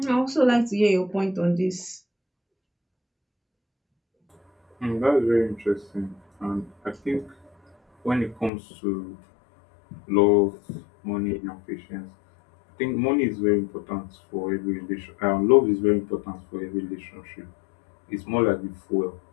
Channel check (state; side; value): drops out; right; at 8.5 s